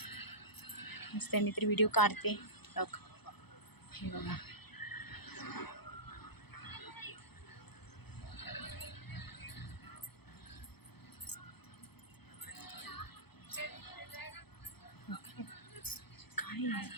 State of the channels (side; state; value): right; late; 0.97 ms